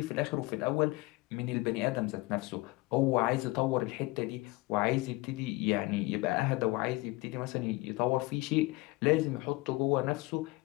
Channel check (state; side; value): quieter; right; 22.5 dB